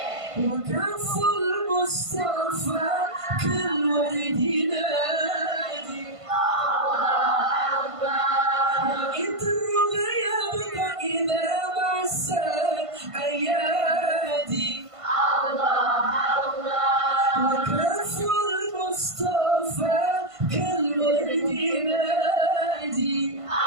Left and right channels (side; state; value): left; late; 1.5 ms